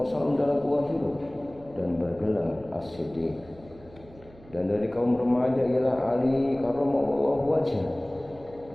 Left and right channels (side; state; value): right; noise; hum, 23 dB below the sound